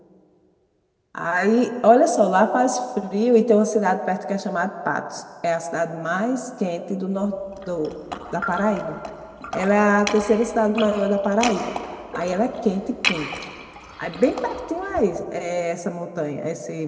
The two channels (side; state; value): both; identical; correlation 1.00